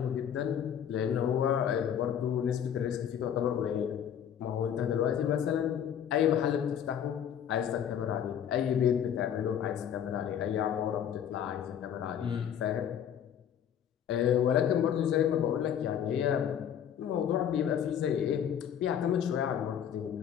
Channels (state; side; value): quieter; right; 9.1 dB